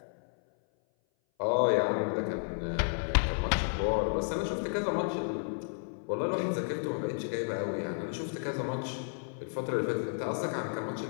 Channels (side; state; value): right; silent; 56 dB below the other